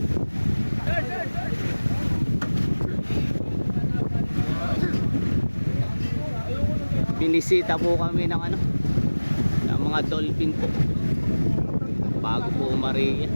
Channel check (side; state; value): both; inverted; correlation -1.00